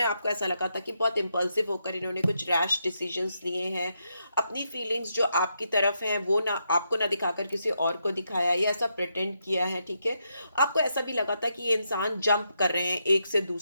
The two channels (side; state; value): both; inverted; correlation -0.81